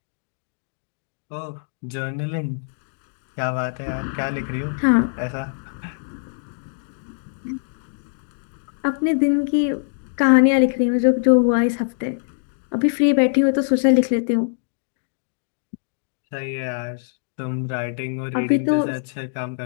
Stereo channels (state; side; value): silent; right; digital silence